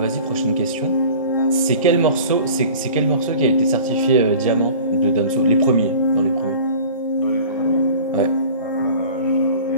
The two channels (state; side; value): inverted; both; correlation -0.43